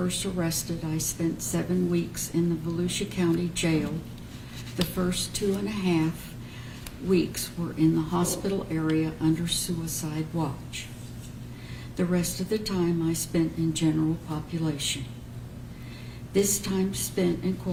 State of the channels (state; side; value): identical; both; correlation 1.00